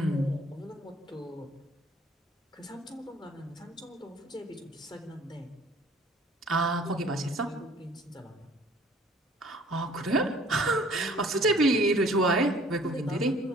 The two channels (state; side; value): normal; both; correlation 0.54